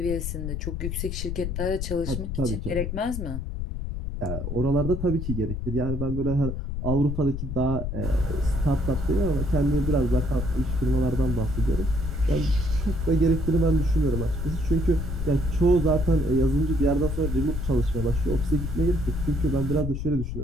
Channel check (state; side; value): noise; left; rumble, 4 dB below the sound